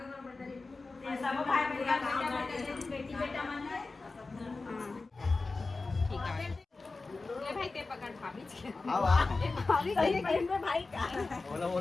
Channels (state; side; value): quieter; right; 3.7 dB